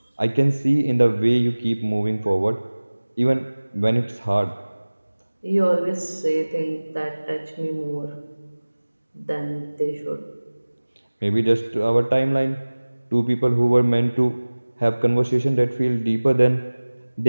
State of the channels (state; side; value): inverted; both; correlation -1.00